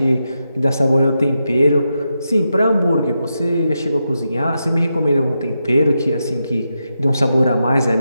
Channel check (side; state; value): both; inverted; correlation -0.86